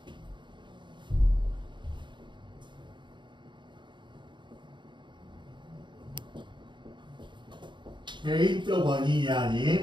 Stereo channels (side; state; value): left; late; 0.23 ms